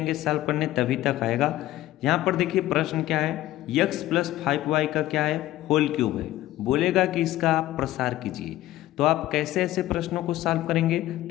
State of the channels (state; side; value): quieter; right; 15.2 dB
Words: सॉल्व करने तभी तक आएगा। यहाँ पर देखिए प्रश्न क्या है, x प्लस 5y का क्या है, होल क्यूब है। बोलेगा कि इसका आप प्रसार कीजिए। तो आप कैसे ऐसे प्रश्नों को सॉल्व करेंगे,